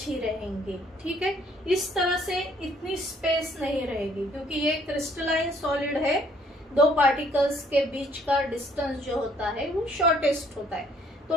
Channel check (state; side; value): normal; both; correlation 0.63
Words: ही रहेंगे, ठीक है। इस तरह से इतनी स्पेस नहीं रहेगी, क्योंकि ये क्रिस्टलाइन सॉलिड है, दो पार्टिकल्स के बीच का डिस्टेंस जो होता है वो शॉर्टेस्ट होता है। तो